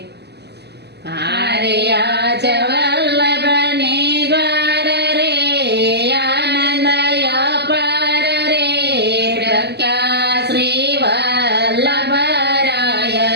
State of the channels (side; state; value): left; late; 0.49 ms